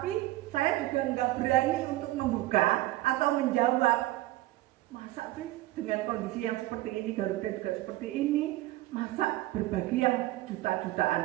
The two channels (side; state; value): left; quieter; 17.2 dB